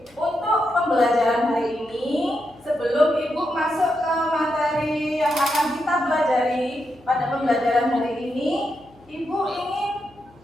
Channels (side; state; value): left; noise; hum, 28 dB below the sound